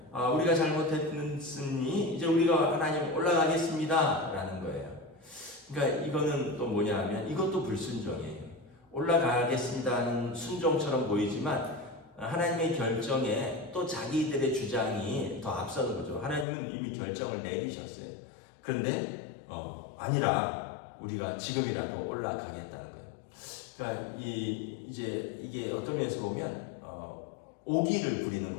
우리가 잘못했으니 이제 우리가 하나님 올라가겠습니다 라는 거예요. 그러니까 이거는 또 뭐냐 하면 이것도 불순종이에요. 올라가겠습니다 하는 순종처럼 보이지만 하나님의 결정에 또 자기들의 주장이 더 앞서는 거죠. 하나님은 이미 결정을 내리셨어요. 그런데 아니라 우리가 지금이라도 올라가겠다는 거예요. 그러니까 이제 이게 어떤 면에서 보면 오기를 부리는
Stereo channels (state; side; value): drops out; right; at 16.4 s